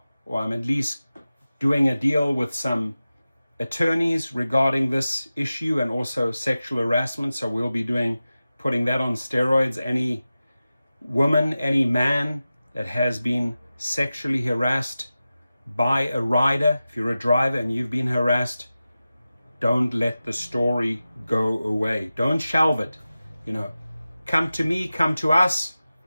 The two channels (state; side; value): inverted; both; correlation -0.95